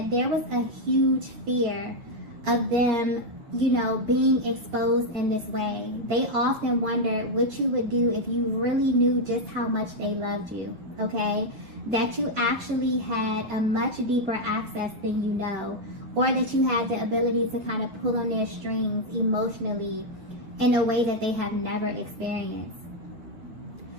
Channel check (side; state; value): left; late; 9.8 ms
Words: there was a huge fear of them, you know, being exposed in this way. They often wondered what you would do if you really knew just how much they loved you, okay? That you actually had a much deeper access than you know, or that you had the ability to kind of pull on their strings emotionally in a way that they have never experienced.